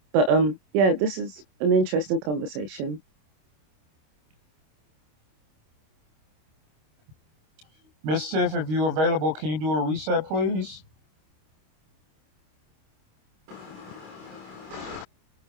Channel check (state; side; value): late; left; 27 ms